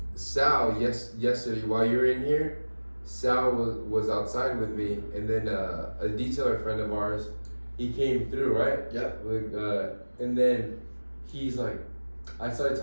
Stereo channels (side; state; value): both; inverted; correlation -1.00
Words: Sal, yesterday while you were in here, Sal was outside with me, and then a detailer friend of ours, he came through, right? Yep. And then he's like, I started